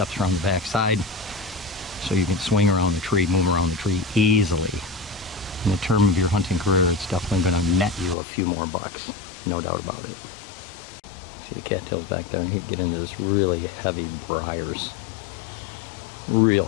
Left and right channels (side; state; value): right; drops out; at 8.2 s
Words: around the backside so you can swing around the tree, move around the tree easily. In the term of your hunting career, it's definitely going to net you a few more bucks, no doubt about it. See the cattails back there, and he'd get into this really heavy briars. Real